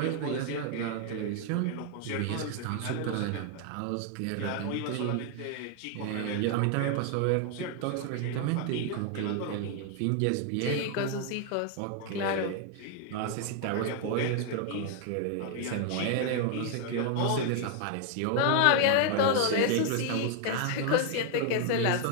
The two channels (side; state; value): both; different; correlation 0.00